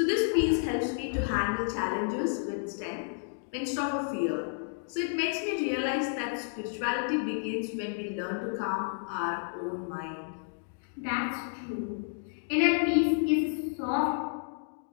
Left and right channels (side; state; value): right; silent; digital silence